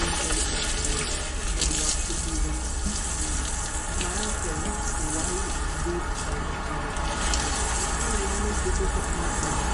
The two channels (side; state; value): both; identical; correlation 1.00